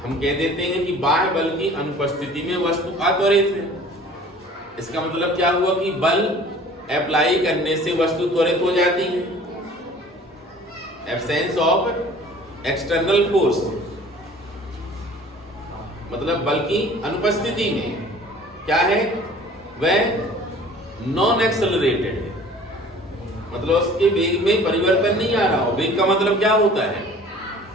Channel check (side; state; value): both; normal; correlation 0.48